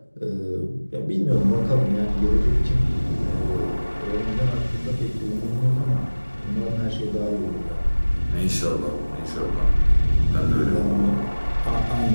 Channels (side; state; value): both; inverted; correlation -1.00